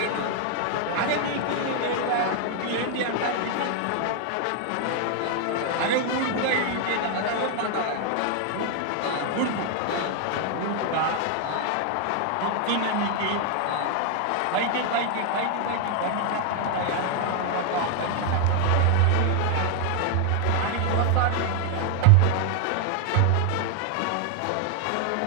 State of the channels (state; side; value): different; both; correlation 0.00